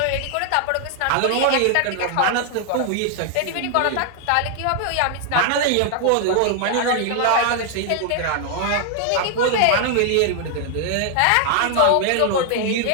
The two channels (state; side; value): different; both; correlation 0.00